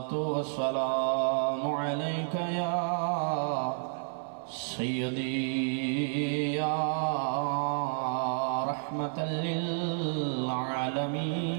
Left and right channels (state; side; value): silent; left; 57 dB below the other